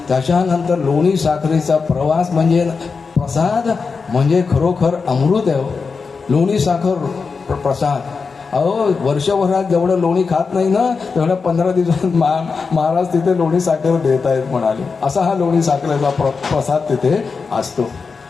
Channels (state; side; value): quieter; right; 4.9 dB